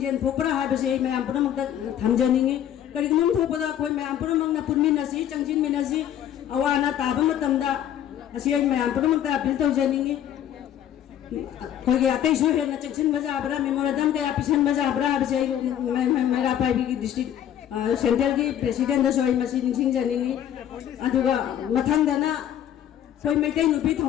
thopra ha ba se mayam punamak ta thamjaningi kari gumam thopada koy mayam punamak na punmin na si changjin min na si awana ta ba matam da asi mayam punamak ta appeal tawjaningi koy ge atai su he na changjin baja abra memorandum ka apisan baja abra ba se mera pai bi district Central ki President da soi masi ningsing janingi aduga mathang dana soi maitai nupi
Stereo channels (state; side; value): quieter; right; 10.5 dB